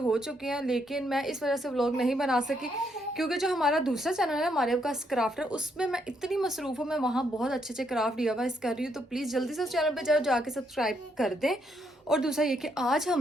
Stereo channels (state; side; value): normal; both; correlation 0.75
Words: चुके हैं, लेकिन मैं इस वजह से व्लॉग नहीं बना सकी क्योंकि जो हमारा दूसरा चैनल है मारिया का क्राफ्टर, उसमें मैं इतनी मसरूफ़ हूँ। मैं वहाँ बहुत अच्छे अच्छे क्राफ्ट DIY कर रही हूँ, तो प्लीज़ जल्दी से उस चैनल पर जाके सब्सक्राइब कर दें। और दूसरा ये कि आज